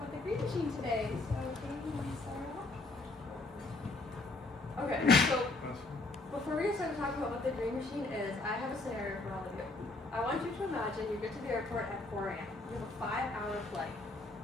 the green machine today. So, Katie, you want to start off? Okay, so before we get started talking about what the green machine is, I have a scenario for all of you. I want you to imagine you get to the airport at 4 a.m. You have a 5-hour flight.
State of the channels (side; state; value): right; quieter; 3.2 dB